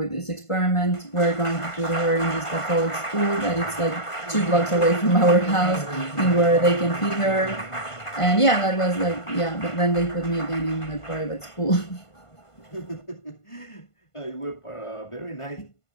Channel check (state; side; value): late; right; 1.5 ms